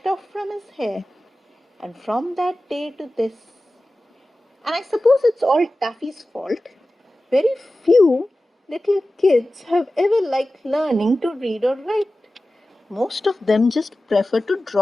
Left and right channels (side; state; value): both; normal; correlation 0.95